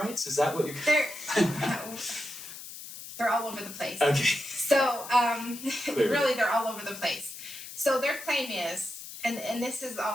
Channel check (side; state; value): left; noise; hiss, 12 dB below the sound